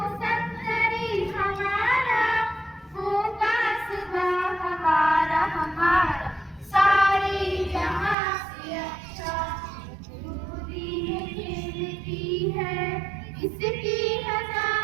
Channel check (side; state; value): left; drops out; at 8.2 s